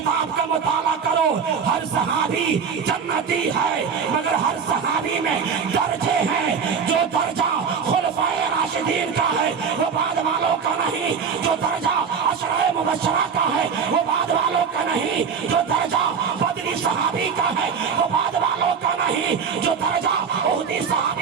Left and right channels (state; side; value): quieter; left; 6.4 dB